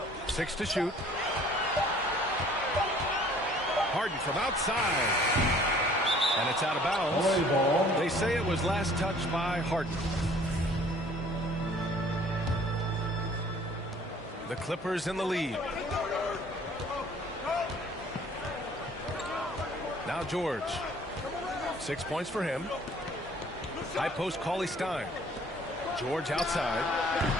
6 to shoot. Harden from outside. And it's out of bounds. They say it was last touched by Harden. The Clippers in the lead. Now George. 6 points for him. High post Cauley Stein. George outside.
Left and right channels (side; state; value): both; normal; correlation 0.54